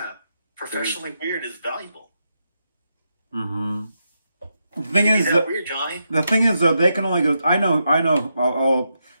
Professionally weird is valuable. Mm-hmm. The thing Is is that that weird, Johnny? the thing is though, they can only go. I know.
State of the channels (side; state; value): both; inverted; correlation -0.84